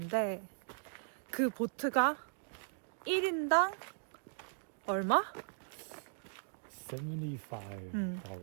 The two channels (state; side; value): silent; left; digital silence